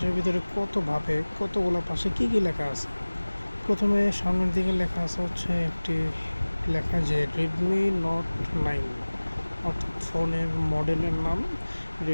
ভিতরে কতভাবে কতগুলো পাশে কী কী লেখা আছে। প্রথমে সামনের দিকে লেখা আছে হচ্ছে একটি লেখা যে Redmi Note 9, অর্থাৎ ফোনের মডেলের নাম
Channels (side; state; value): both; inverted; correlation -1.00